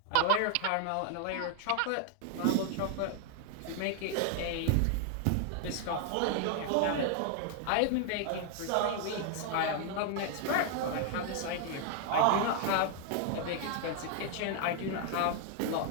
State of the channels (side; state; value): both; different; correlation 0.00